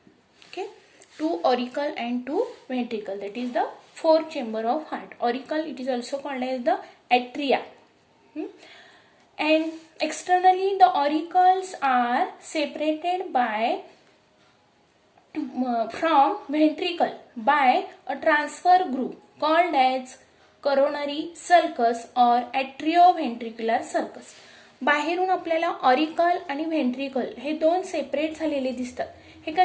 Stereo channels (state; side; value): identical; both; correlation 1.00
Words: Okay, 2 auricle and 2 ventricle. That is the 4 chamber of heart. Auricle, it is also called as the atria. And externally the auricles are separated by from ventricle by a transfer group called as coronary sulcus or atrioventricular sulcus. बाहेरून आपल्याला auricle आणि ventricle हे 2 separate झालेले दिसतात. हे